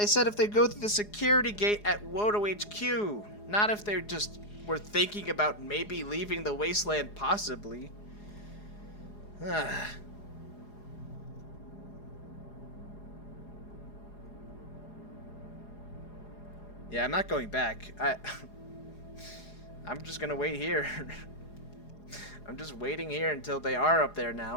they go through the security gate at Wodo HQ, not if they just were thinking about maybe leaving the wasteland, possibly. Yeah, I'm not going back. I'm just gonna wait here. I'm just waiting here until they are up there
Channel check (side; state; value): right; late; 4.8 ms